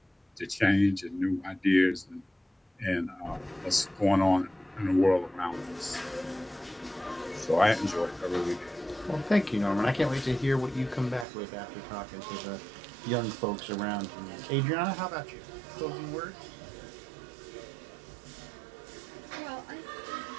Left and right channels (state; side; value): drops out; left; at 11.2 s